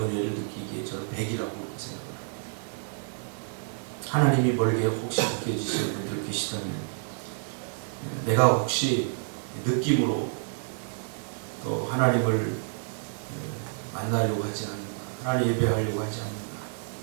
느끼기에 저는 100이라고 생각합니다. 하나님이 멀게 혹시 느껴지시는 분들 계시다면, 내가 혹시 느낌으로 또 하나님을 만나려고 하지 않는가, 하나님 예배하려고 하지 않는가,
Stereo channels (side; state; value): left; silent; digital silence